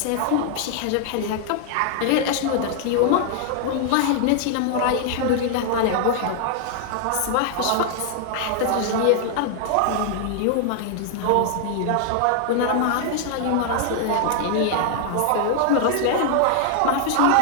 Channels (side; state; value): both; different; correlation 0.00